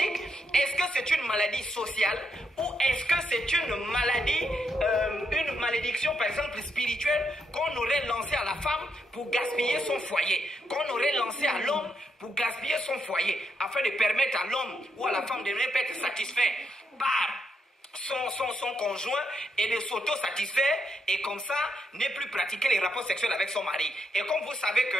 est-ce que c'est une maladie sociale ou est-ce que c'est une maladie, une malédiction par exemple spirituelle qu'on aurait lancée à la femme pour gaspiller son foyer, qu'on aurait lancé à l'homme pour gaspiller son foyer, afin de permettre à l'homme ou à la femme de ne pas être satisfait par son conjoint et de s'auto-satisfaire et comme ça ne plus pratiquer les rapports sexuels avec son mari. Et comme vous savez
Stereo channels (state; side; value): normal; both; correlation 0.80